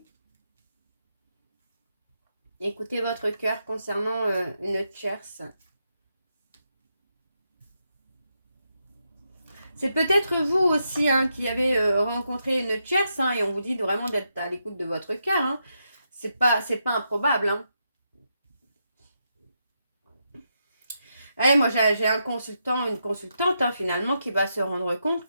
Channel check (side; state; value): both; inverted; correlation -0.83